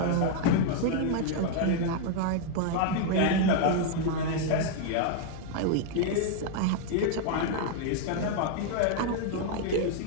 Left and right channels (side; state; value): both; different; correlation 0.00